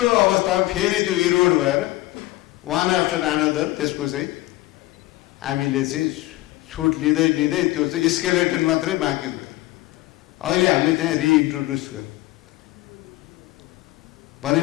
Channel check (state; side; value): quieter; right; 18.0 dB